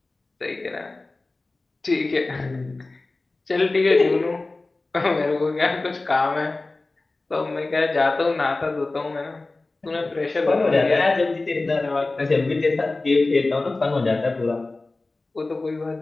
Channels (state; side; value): quieter; right; 3.2 dB